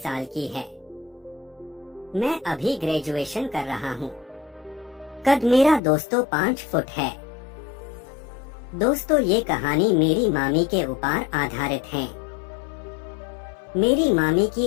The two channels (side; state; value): right; drops out; at 5.8 s